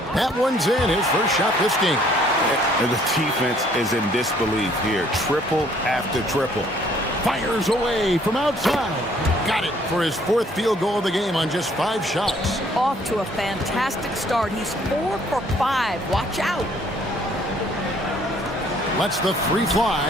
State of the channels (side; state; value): both; normal; correlation 0.61